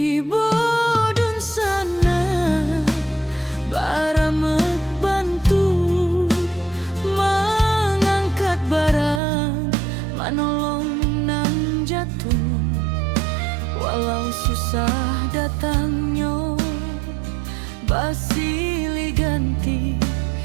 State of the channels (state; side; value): drops out; left; at 9.2 s